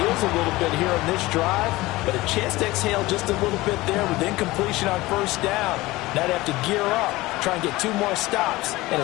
a little bit here on this drive, but a chance to exhale just a little bit there with incompletion on 1st down. Now they have to gear up, try and get 2 more stops, and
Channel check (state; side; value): quieter; right; 19.5 dB